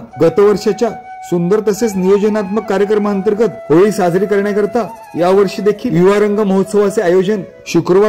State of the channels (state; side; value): identical; both; correlation 1.00